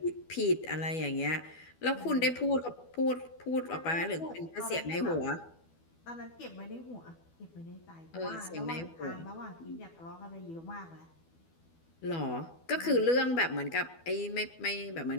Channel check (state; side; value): late; right; 12 ms